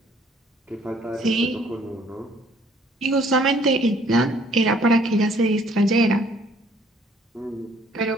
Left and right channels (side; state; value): both; normal; correlation 0.60